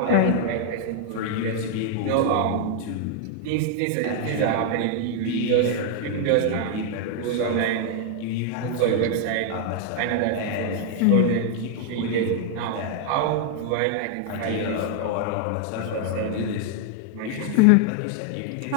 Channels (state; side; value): different; both; correlation 0.00